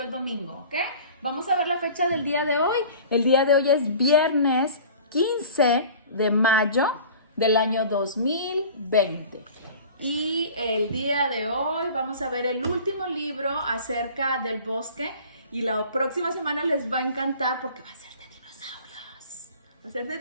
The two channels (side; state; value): both; inverted; correlation -0.43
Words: el domingo, ¿ok? Vamos a ver la fecha del día de hoy. El día de hoy es viernes 15 de mayo del año 2020. Y el día de hoy vamos a ver el último libro acerca del bosque y la próxima semana les va a encantar porque va a ser de dinosaurios. Va a ser de